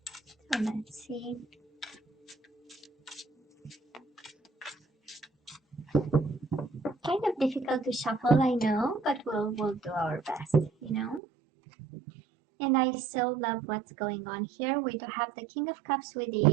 So let's see. Kind of difficult to shuffle, I know, but we'll do our best, you know. And I so love what's going on here. We do have the King of Cups with the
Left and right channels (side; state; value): left; drops out; at 11.2 s